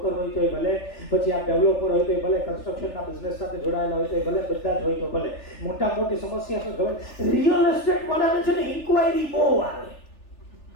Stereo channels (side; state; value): right; late; 3.4 ms